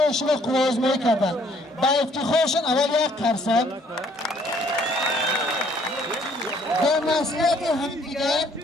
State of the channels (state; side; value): normal; both; correlation 0.62